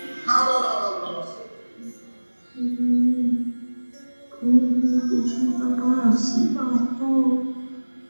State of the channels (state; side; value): inverted; both; correlation -1.00